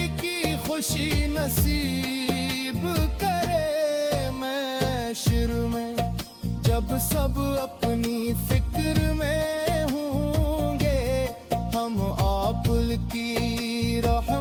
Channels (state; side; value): identical; both; correlation 1.00